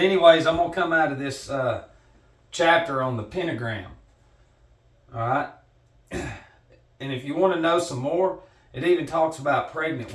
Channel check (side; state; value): both; identical; correlation 1.00